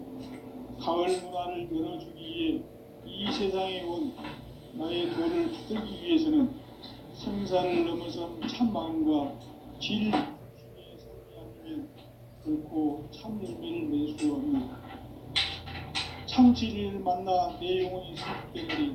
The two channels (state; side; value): identical; both; correlation 1.00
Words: 가을 문화를 열어주기 위해 이 세상에 온 나의 도를 붙들기 위해서는 생사를 넘어선 참 마음과 질 중심의 삶이 아니면 결코 참 열매를 맺을 수 없는 참 진리를 만나 내 영혼이 성숙되는 데